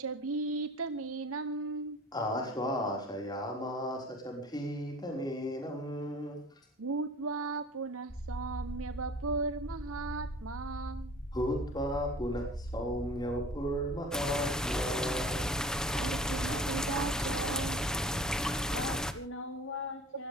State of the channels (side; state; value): both; normal; correlation 0.43